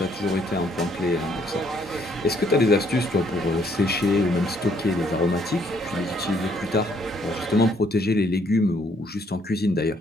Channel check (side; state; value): both; normal; correlation 0.67